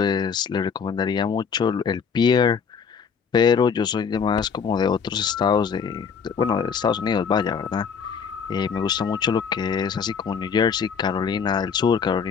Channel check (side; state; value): right; quieter; 6.4 dB